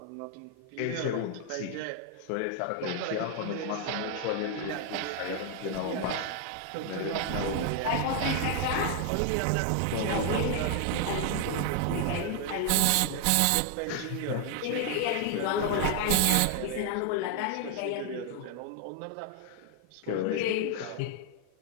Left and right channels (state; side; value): different; both; correlation 0.00